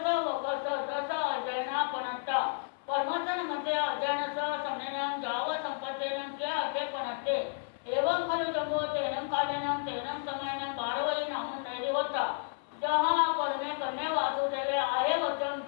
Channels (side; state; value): right; silent; 56 dB below the other